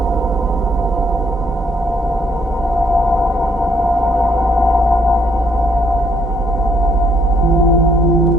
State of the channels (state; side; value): normal; both; correlation 0.69